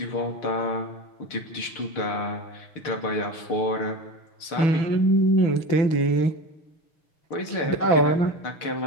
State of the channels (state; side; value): late; right; 6.6 ms